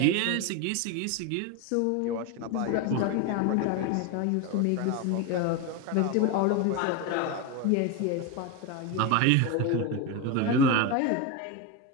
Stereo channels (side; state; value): both; different; correlation 0.03